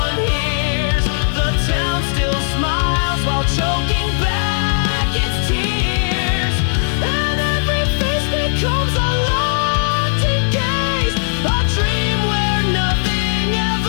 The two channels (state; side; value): silent; right; digital silence